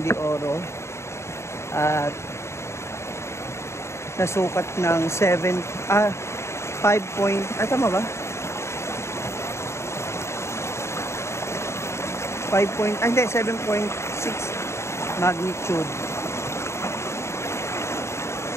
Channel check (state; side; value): late; right; 0.13 ms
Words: de Oro at nasukat ng 5 point, tama ba? 7.6 magnitude.